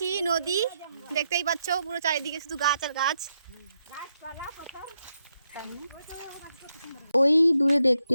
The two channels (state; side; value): inverted; both; correlation -0.82